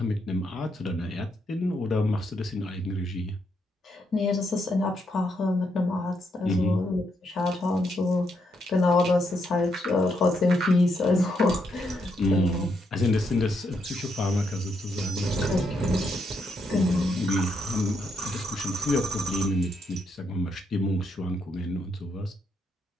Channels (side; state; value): both; normal; correlation 0.78